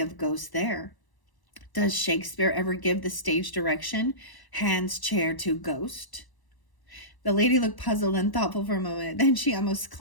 of ghosts there. Does Shakespeare ever give the stage direction, hands chair to ghost? The lady looked puzzled and thoughtful for a moment. Then she almost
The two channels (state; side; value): late; right; 1.0 ms